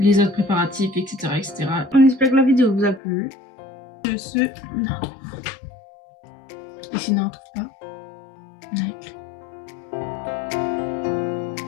autres préparatifs, etc. etc. On espère que la vidéo vous a plu. De ce... Et sinon, on trouve pas. On a écrit.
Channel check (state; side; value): drops out; right; at 3.0 s